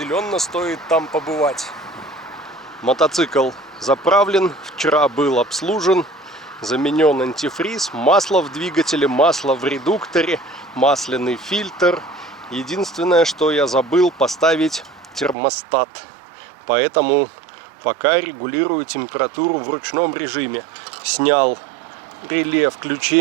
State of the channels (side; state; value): left; drops out; at 15.4 s